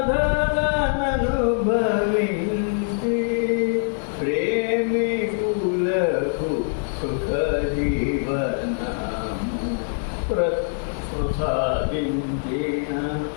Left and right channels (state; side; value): silent; right; digital silence